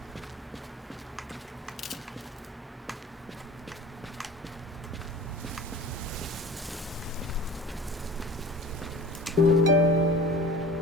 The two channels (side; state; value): both; normal; correlation 0.40